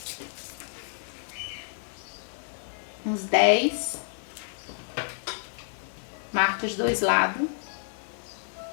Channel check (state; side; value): silent; right; 58 dB below the other